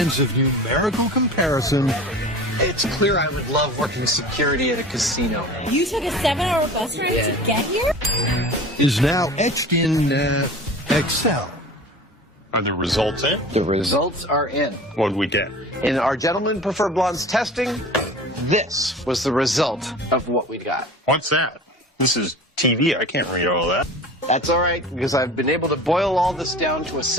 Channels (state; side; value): normal; both; correlation 0.38